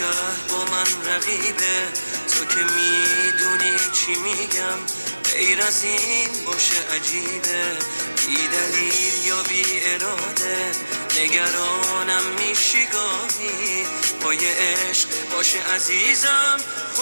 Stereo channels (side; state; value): both; inverted; correlation -1.00